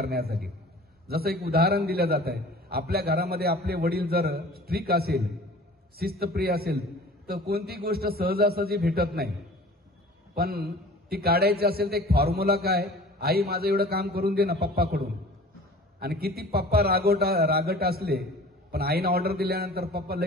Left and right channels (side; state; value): both; normal; correlation 0.44